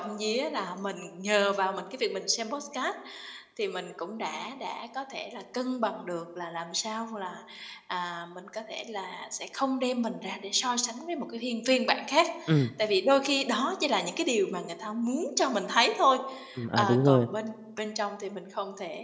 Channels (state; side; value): identical; both; correlation 1.00